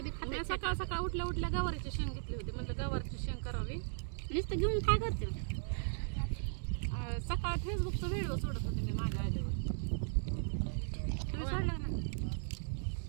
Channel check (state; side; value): silent; left; digital silence